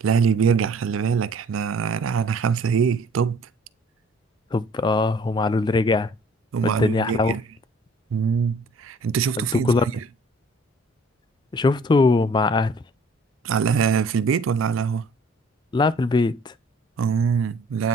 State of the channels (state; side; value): normal; both; correlation 0.54